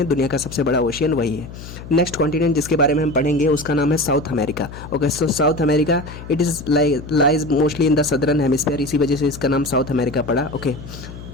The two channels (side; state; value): left; noise; hum, 13 dB below the sound